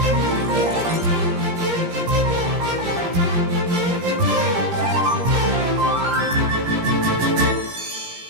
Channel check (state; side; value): late; left; 17 ms